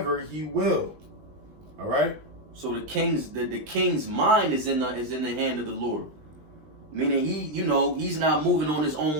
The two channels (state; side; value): late; left; 20 ms